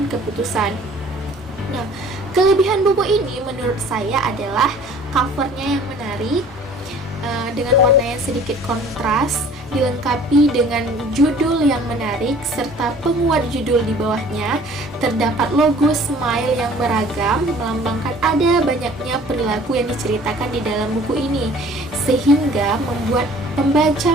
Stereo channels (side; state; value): both; normal; correlation 0.51